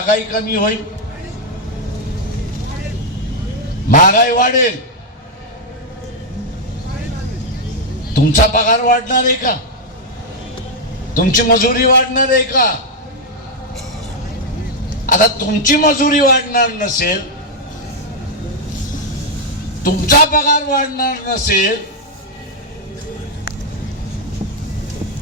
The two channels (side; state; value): both; normal; correlation -0.01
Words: कमी होईल? महागाई वाढेल. तुमचा पगार वाढणार आहे का? तुमची मजुरी वाढणार आहे का? आता तुमची मजुरी वाढणार नसेल, तुमचा पगार वाढणार नसेल,